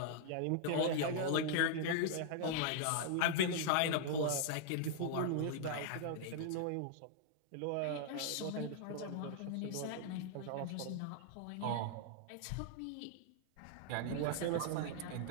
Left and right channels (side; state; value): both; different; correlation -0.01